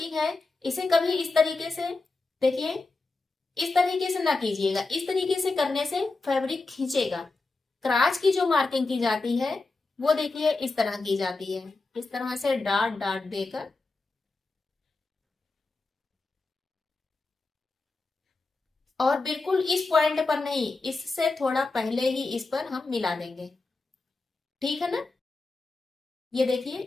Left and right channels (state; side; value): quieter; right; 3.6 dB